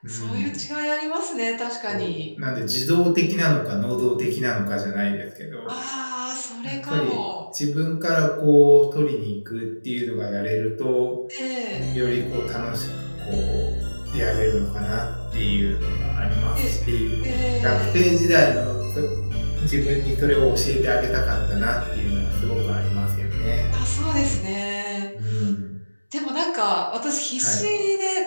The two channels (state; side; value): inverted; both; correlation -1.00